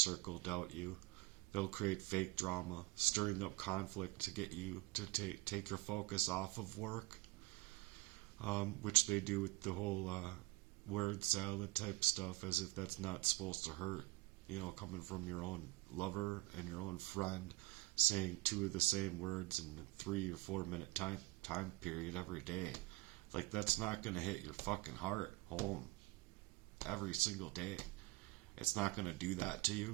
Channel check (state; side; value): quieter; left; 22.4 dB